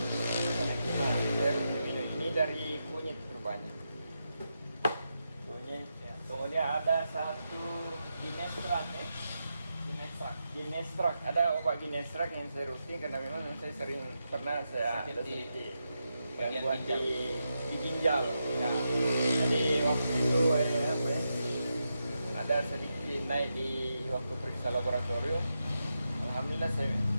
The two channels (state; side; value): inverted; both; correlation -0.86